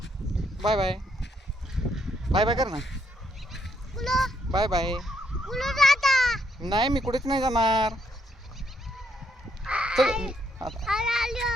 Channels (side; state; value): both; normal; correlation 0.74